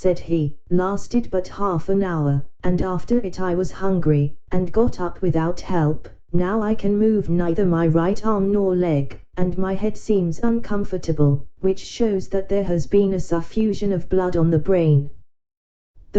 he, lasted but half an hour, and after it I was hungry, and got up without help. Now I can move neither my right arm nor leg, and my head seems uncomfortable, which shows that there has been a suffusion of blood on the brain.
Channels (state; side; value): identical; both; correlation 1.00